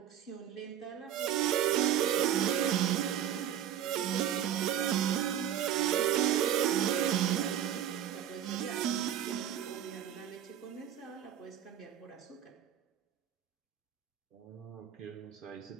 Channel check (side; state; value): left; quieter; 10.3 dB